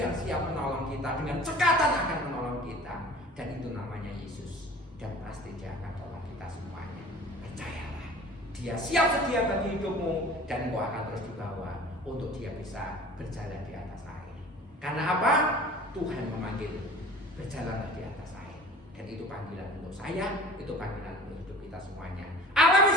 siap menolong kita, dengan cekatan akan menolong kita. Dan itu namanya Yesus. Dan pasti Dia akan tolong kita semuanya. Percayalah, Dia siap sedia bagi hidupmu, dan engkau akan terus dibawa untuk Dia bisa berjalan di atas air. Karena apa? Tuhan memanggil, berjalanlah di atas air. Dan itu panggilan untuk saya, itu panggilan untuk hidup kita semuanya. Alami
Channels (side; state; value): both; normal; correlation 0.43